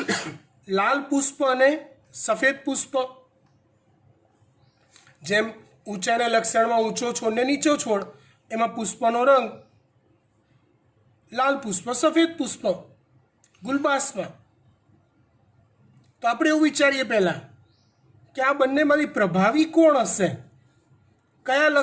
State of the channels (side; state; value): both; identical; correlation 1.00